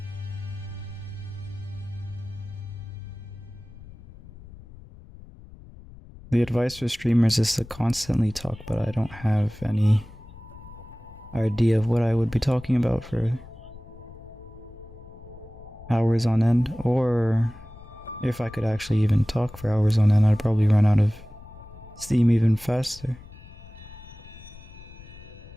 The advice for streamers is to constantly talk, but I don't have any idea of what I would be talking about for hours on end, or if I could actually even talk for hours on end, I'd probably run out of steam even faster.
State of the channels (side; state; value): left; noise; rumble, 19 dB below the sound